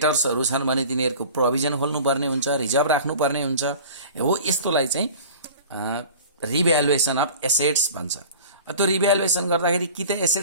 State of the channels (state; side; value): inverted; both; correlation -0.41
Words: छन् भने तिनीहरुको प्रोभिजन खोल्नु पर्ने हुन्छ, रिजर्भ राख्नु पर्ने हुन्छ। हो यस्तोलाई चाहिँ रिभ्यालुएसन अफ एसेट्स भन्छ। त्यो रिभ्यालुएसन गर्दाखेरि कि त